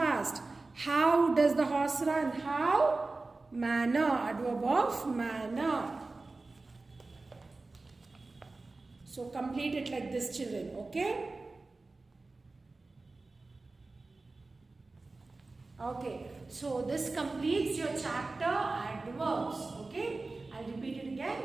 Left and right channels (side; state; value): left; quieter; 3.5 dB